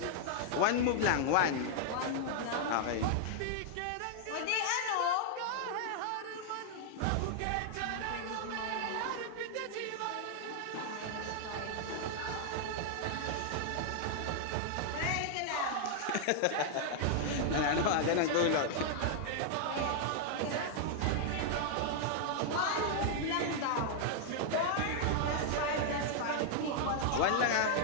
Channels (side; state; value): both; different; correlation -0.01